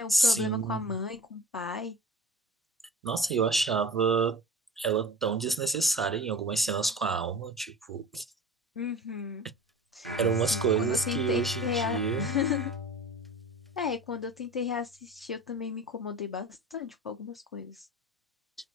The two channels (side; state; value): both; normal; correlation 0.39